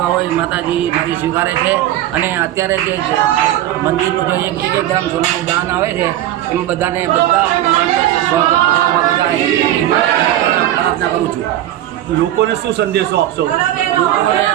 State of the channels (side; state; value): left; quieter; 13.2 dB